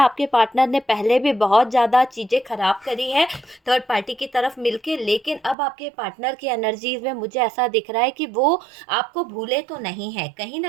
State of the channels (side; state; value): left; drops out; at 5.6 s